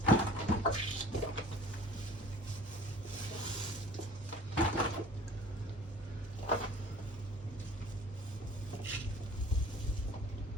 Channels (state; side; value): normal; both; correlation 0.47